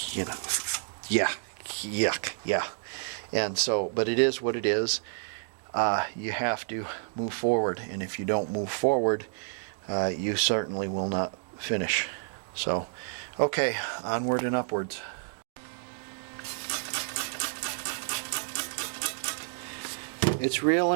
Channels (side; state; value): left; silent; digital silence